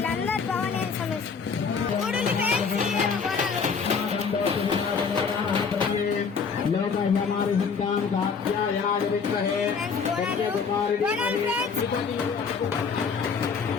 భవానీ సమస్య చూడండి ఫ్రెండ్స్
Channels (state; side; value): quieter; right; 5.7 dB